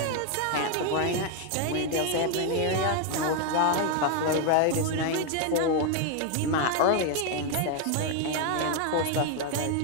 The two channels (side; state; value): both; different; correlation 0.01